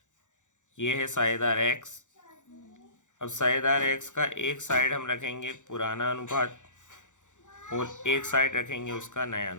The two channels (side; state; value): right; late; 0.85 ms